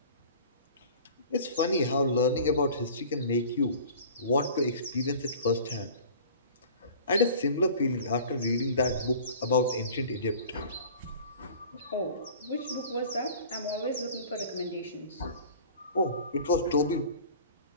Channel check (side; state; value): both; inverted; correlation -0.43